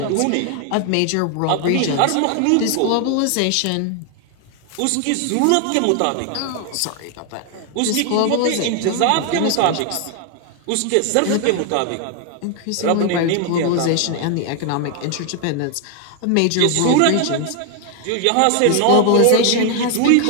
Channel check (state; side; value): different; both; correlation 0.00